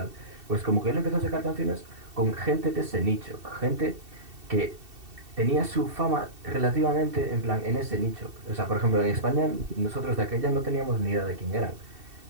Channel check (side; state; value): left; late; 2.7 ms